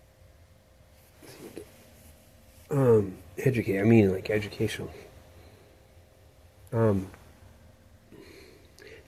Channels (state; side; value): identical; both; correlation 1.00